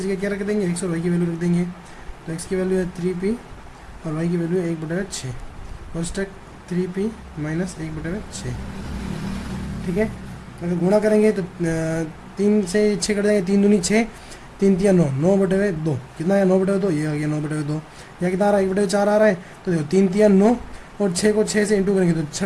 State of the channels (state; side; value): identical; both; correlation 1.00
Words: क्या रख देंगे, x और y की वैल्यू रख देंगे। तो x की वैल्यू है 3p और y की वैल्यू है 1/6 कोष्टक 3p माइनस 1/6। ठीक है, अगर गुणा करेंगे तो 3 से 6 कट जाएंगे, 3 दूनी 6, 3 तिया 9, 9/2 कितना है 9/2, ये आ गया 9/2। या कितना आ रहा है 1/4 आ रहा है, तो देखो 3 तिया 9 और 6 को 6 से इंटू करेंगे तो 6